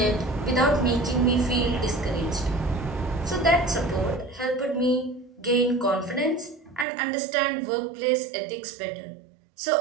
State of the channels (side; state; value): left; drops out; at 6.9 s